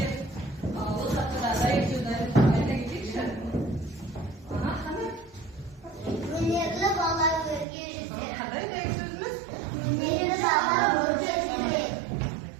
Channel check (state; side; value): drops out; left; at 7.7 s